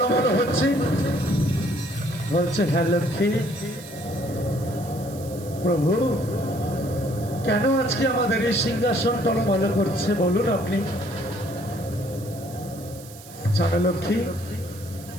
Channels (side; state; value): right; noise; hiss, 18 dB below the sound